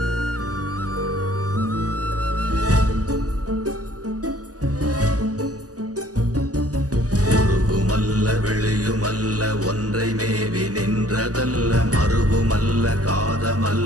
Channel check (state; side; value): late; left; 0.67 ms